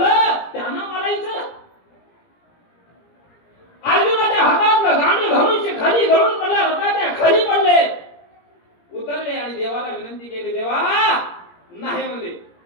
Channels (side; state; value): right; late; 17 ms